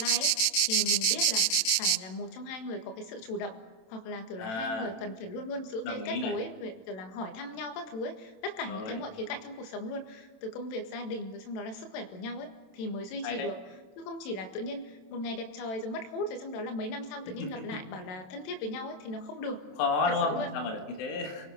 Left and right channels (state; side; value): late; right; 27 ms